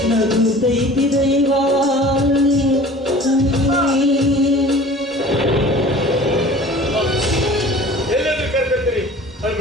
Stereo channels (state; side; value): normal; both; correlation 0.44